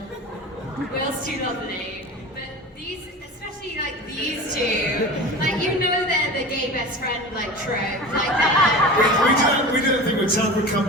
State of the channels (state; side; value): normal; both; correlation 0.33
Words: Will's too lovely. But these, especially like these two, like, you know they're the gay best friend, like, trope. Like that. We didn't think we'd tell them we'd come